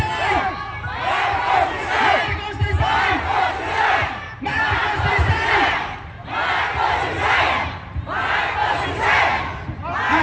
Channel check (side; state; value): both; identical; correlation 1.00